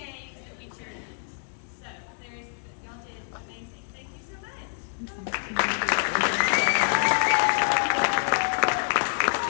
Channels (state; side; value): silent; right; 57 dB below the other